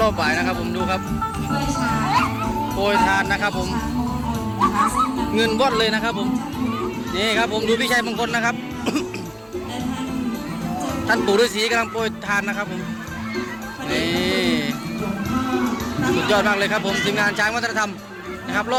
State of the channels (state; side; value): identical; both; correlation 1.00